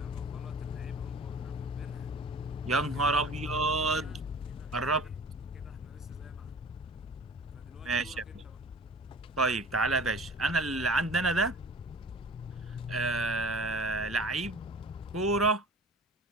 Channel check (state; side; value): normal; both; correlation 0.43